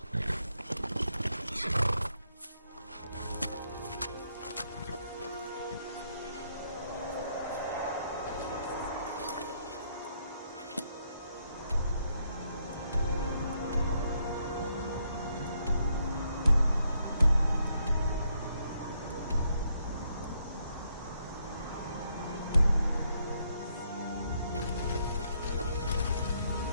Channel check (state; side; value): inverted; both; correlation -0.75